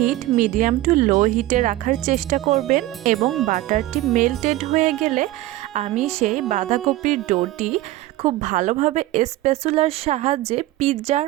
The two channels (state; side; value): quieter; left; 16.4 dB